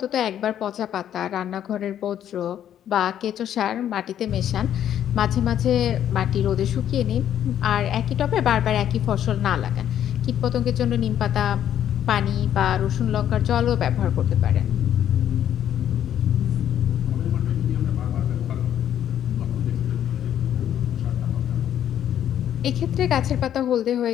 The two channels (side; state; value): right; quieter; 10.4 dB